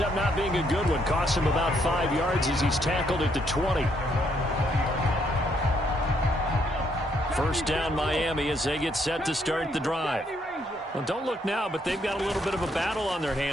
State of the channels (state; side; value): normal; both; correlation 0.72